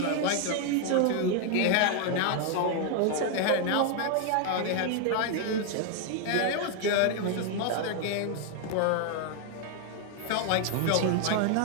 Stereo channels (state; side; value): different; both; correlation 0.00